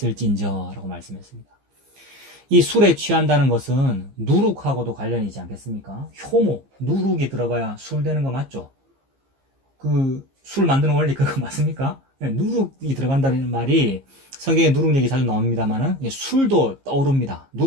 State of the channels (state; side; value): late; left; 15 ms